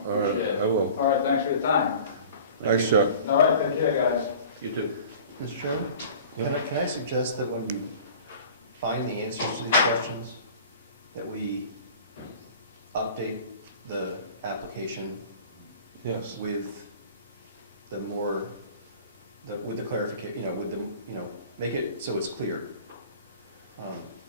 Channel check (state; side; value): inverted; both; correlation -0.43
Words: All right, Appreciate it. I will. All right, thanks for your time. Thanks, Chuck. All right, take care, guys. You too. Mr. Chairman, Yeah. can I suggest that when you find the answers to these questions, that we update the application Yes. with the more, with the clarification, with the, make it so it's clear